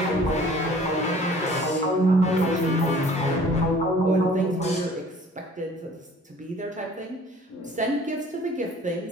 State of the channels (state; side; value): normal; both; correlation 0.51